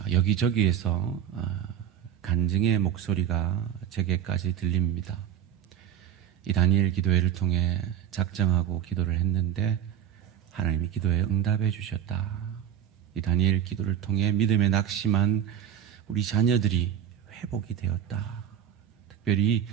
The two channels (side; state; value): left; quieter; 9.8 dB